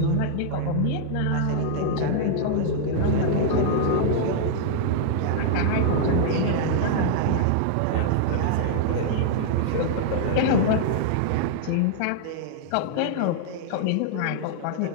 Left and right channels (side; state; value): both; different; correlation -0.01